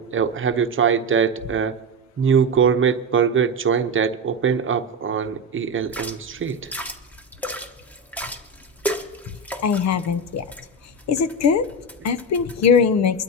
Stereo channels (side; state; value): both; normal; correlation 0.15